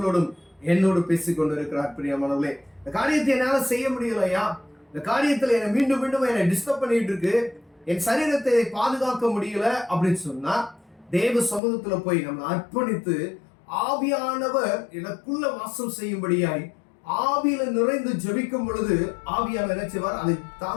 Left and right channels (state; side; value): drops out; right; at 11.6 s